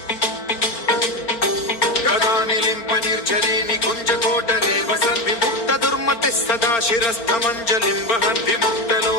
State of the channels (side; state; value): right; late; 4.4 ms